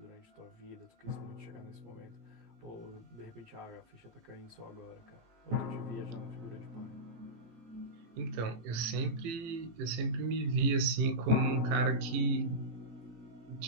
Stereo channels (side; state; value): left; late; 18 ms